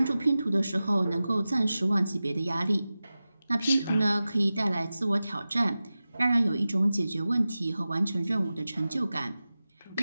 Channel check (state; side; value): inverted; both; correlation -0.95